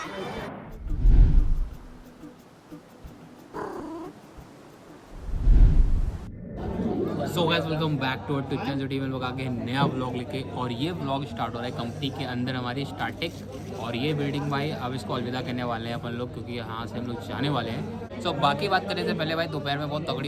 So guys welcome back to Twitch and team. लोग आगे नया व्लॉग लेके, और ये व्लॉग स्टार्ट हो रहा है कंपनी के अंदर हमारी स्टार्टिंग। और ये बिल्डिंग भाई अब इसको अलविदा करने वाले हैं अपन लोग, क्योंकि यहाँ से हम लोग जाने वाले हैं। सो बाकी बात करने से पहले भाई दोपहर में बहुत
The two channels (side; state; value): both; identical; correlation 1.00